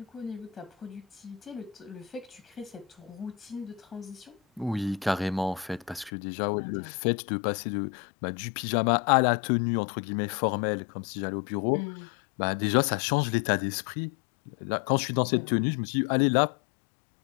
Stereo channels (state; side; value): drops out; right; at 6.1 s